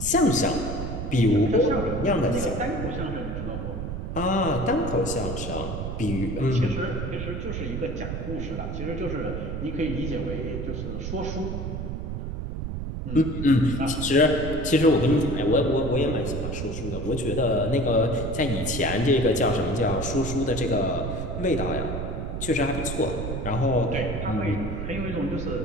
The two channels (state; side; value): noise; right; rumble, 4 dB below the sound